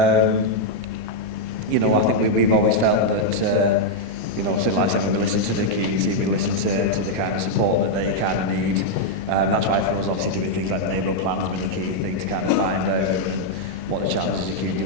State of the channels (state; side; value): late; left; 38 ms